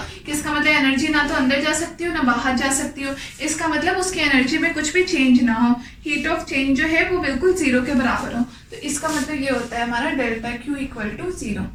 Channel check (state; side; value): identical; both; correlation 1.00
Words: कि इसका मतलब एनर्जी ना तो अंदर जा सकती हो ना बाहर जा सकती हो, इसका मतलब उसकी एनर्जी में कुछ भी चेंज ना हो, हीट ऑफ चेंज जो है वो बिल्कुल जीरो के बराबर हो। तो इसका मतलब ये होता है हमारा delta Q equal to zero.